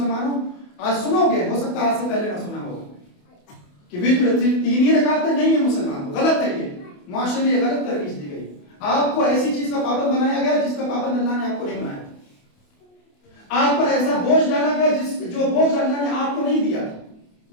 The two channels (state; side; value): late; right; 28 ms